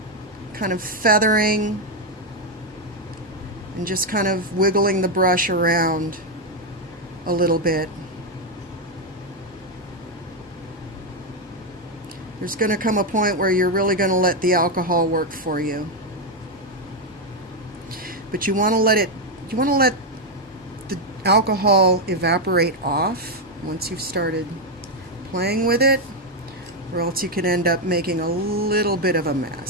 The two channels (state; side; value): normal; both; correlation 0.04